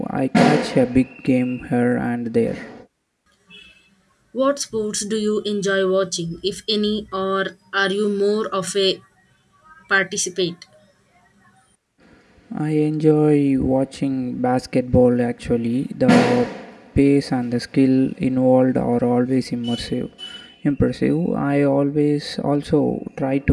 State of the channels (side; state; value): both; identical; correlation 1.00